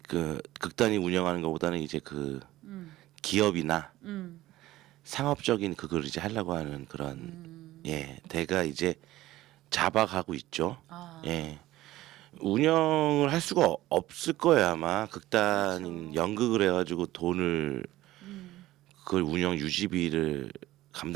그 극단이 운영하는 것보다는 이제 그 음. 기업이나 음. 상업적인 그걸 이제 하려고 하는 그런 대가 이제 잡아가고 있죠. 아. 예. 운영을 할 수가 없을 거예요 아마 극단인 그렇죠. 연극을 해가지고 돈을 그걸 운영 유지비를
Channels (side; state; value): left; quieter; 16.2 dB